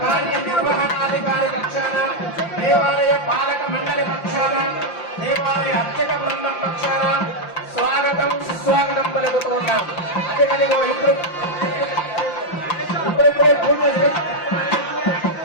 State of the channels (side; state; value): right; late; 5.8 ms